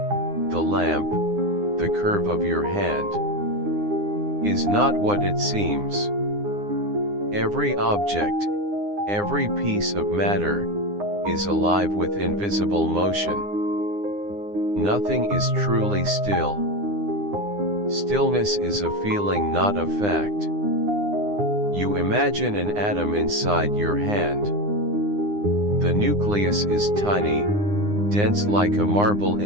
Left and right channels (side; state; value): left; late; 9.8 ms